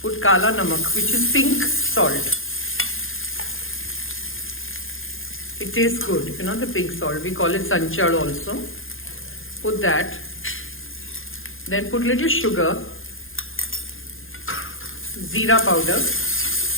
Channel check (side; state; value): right; late; 0.59 ms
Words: put kaalaa namak, which is pink salt. It tastes good, you know, the pink salt. We call it sanchad also. Put that. Then put little sugar, jeera powder.